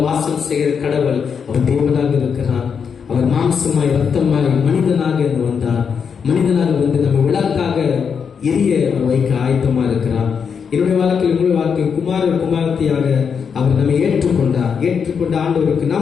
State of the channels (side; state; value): right; quieter; 6.6 dB